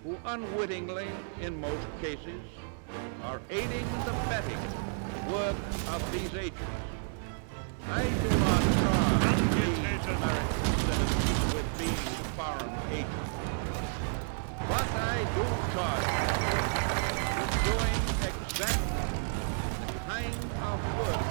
who unwittingly, in most cases, are aiding and abetting work of these agents. I do not charge these American citizens with being foreign agents, but I do charge them with doing exactly the kind of work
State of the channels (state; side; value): silent; left; digital silence